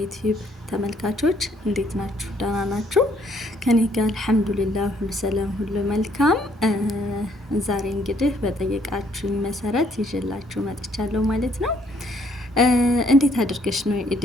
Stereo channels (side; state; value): both; normal; correlation 0.66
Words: ተመልካቾች እንዴት ናችሁ? ደህና ናችሁ? ከኔ ጋር አልሐምዱሊላህ ሁሉ ሰላም፣ ሁሉ መልካም። ዛሬ እንግዲህ በጠየቃችሁኝ መሰረት ይዤላችሁ መጥቻለሁ ማለት ነው። እንዴት አድርገሽ ነው